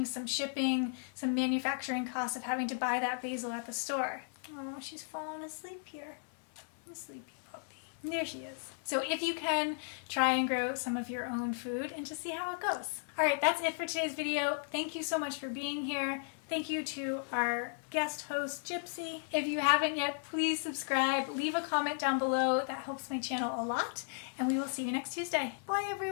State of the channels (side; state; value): right; silent; 54 dB below the other